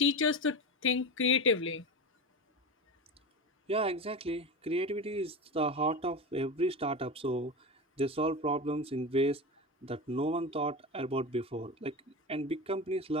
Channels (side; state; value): both; normal; correlation 0.23